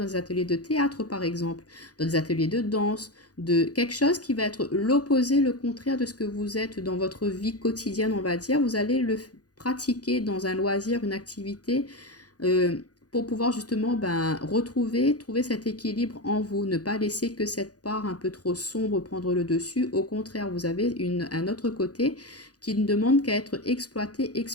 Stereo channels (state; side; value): late; right; 0.68 ms